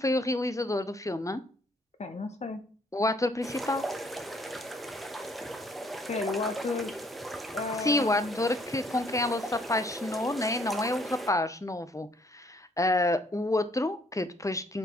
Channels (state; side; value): normal; both; correlation 0.64